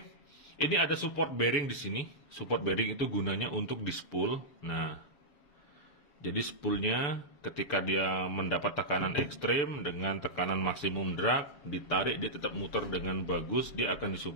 ini ada support bearing di sini. Support bearing itu gunanya untuk di spool. Nah, jadi spoolnya ketika dia mendapat tekanan ekstrim dengan tekanan maksimum drag, ditarik dia tetap muter dengan bagus, dia akan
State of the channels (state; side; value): late; right; 7.3 ms